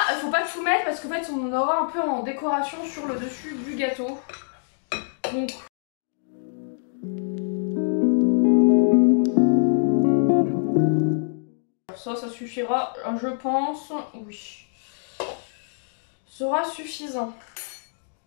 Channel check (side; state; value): right; silent; digital silence